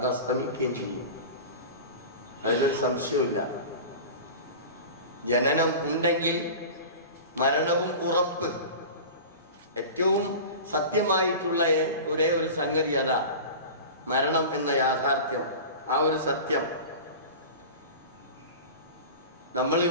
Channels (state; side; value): inverted; both; correlation -0.33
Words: അസ്തമിക്കുകയും ചെയ്യും, അതിനൊരു സംശയമില്ല. ജനനം ഉണ്ടെങ്കിൽ മരണവും ഉറപ്പ്. ഏറ്റവും സത്യമായിട്ടുള്ള ഒരേ ഒരു സംഗതി അതാ, മരണം എന്ന യാഥാർത്ഥ്യം. ആ ഒരു സത്യം